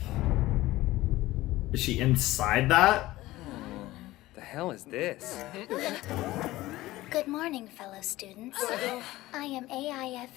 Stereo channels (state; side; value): quieter; right; 17.5 dB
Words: Is she inside that? The hell is this? Good morning, fellow students. I am